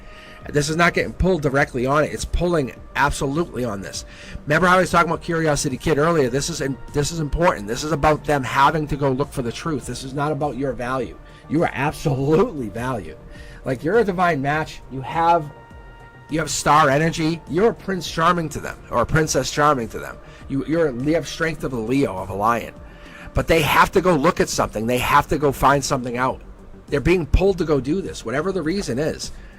This is not getting pulled directly on it. It's pulling absolutely on this. Remember how I was talking about Curiosity Kid earlier? This is important. This is about them having to go look for the truth. This is not about your value. You are absolutely valued. Like you're a divine match. You have star energy. You're a Prince Charming to them, or a Princess Charming to them. You have strength of a Leo, of a lion. But they have to go look at something. They have to go find something out. They're being pulled to go do this, whatever the reason is.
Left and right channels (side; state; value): both; identical; correlation 1.00